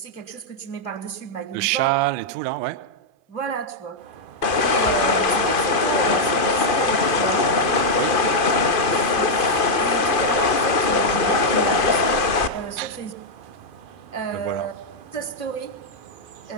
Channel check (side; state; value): right; late; 2.4 ms